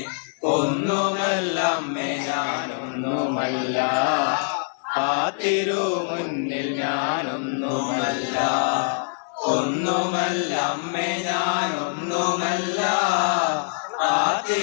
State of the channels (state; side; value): silent; right; 63 dB below the other